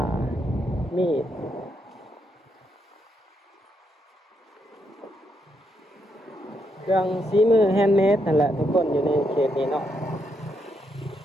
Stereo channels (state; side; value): normal; both; correlation 0.79